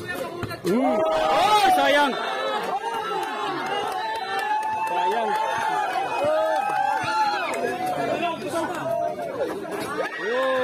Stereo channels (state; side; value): identical; both; correlation 1.00